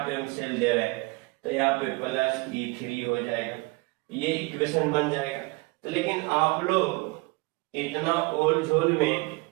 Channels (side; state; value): left; quieter; 25.7 dB